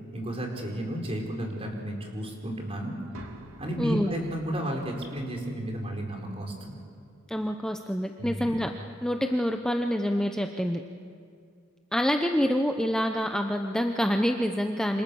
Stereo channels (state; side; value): normal; both; correlation 0.89